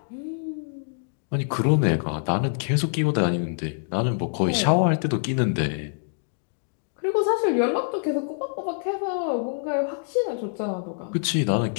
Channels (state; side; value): silent; right; digital silence